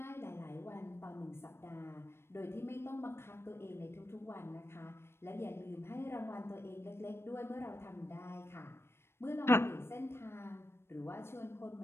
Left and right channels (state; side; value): late; right; 0.12 ms